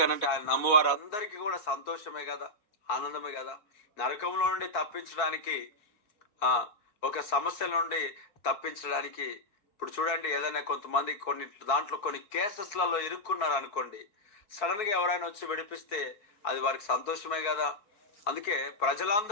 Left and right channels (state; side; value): late; right; 4.7 ms